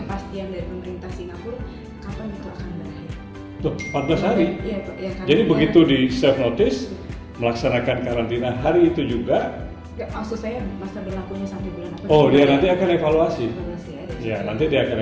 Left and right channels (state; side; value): identical; both; correlation 1.00